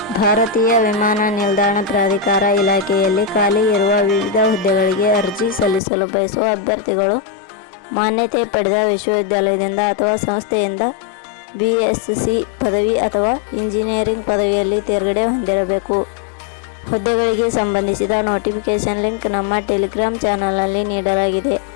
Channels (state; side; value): drops out; right; at 5.8 s